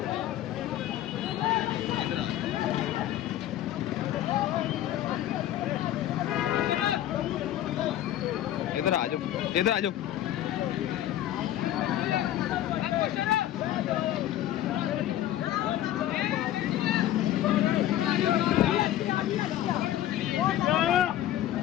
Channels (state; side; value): quieter; right; 12.7 dB